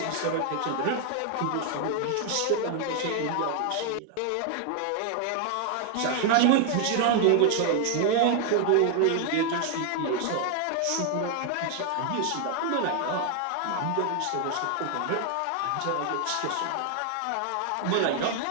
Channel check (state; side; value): different; both; correlation 0.00